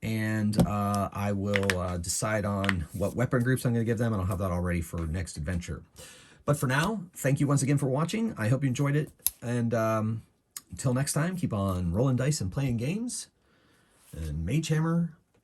And I will decide on what weapon groups I'm going to give them, and I'll have that all ready for next adventure. But for now, thank you once again for watching. I hope you enjoyed it. And until next time, keep on rolling dice and playing games. And Magehammer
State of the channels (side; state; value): both; identical; correlation 1.00